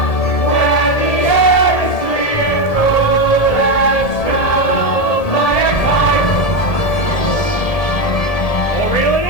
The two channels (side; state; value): right; late; 1.7 ms